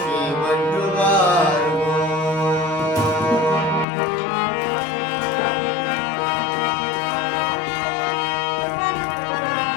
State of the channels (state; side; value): drops out; right; at 3.9 s